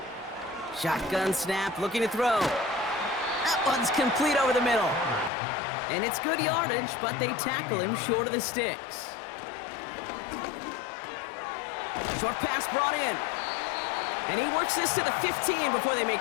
Shotgun snap, looking to throw. That one's complete over the middle. And it's good yardage, but they tackle him short of the sticks. Short pass brought in. And he works this to the 15 before they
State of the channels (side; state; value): right; drops out; at 5.3 s